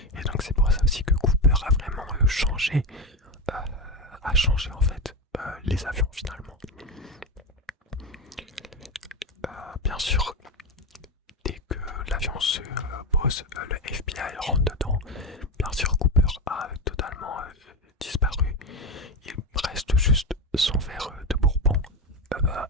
l'avion se pose, le FBI rentre dedans. Bien sûr, Cooper a totalement disparu. Il reste juste son verre de bourbon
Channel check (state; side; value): normal; both; correlation 0.16